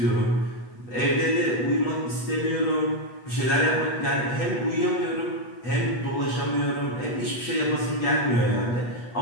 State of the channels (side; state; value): right; late; 8.2 ms